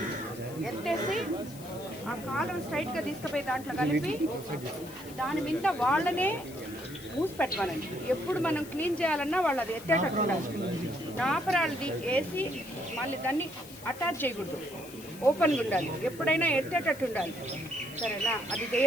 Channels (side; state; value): left; noise; hiss, 17 dB below the sound